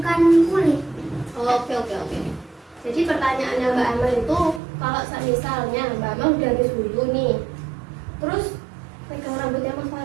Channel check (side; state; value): left; drops out; at 4.6 s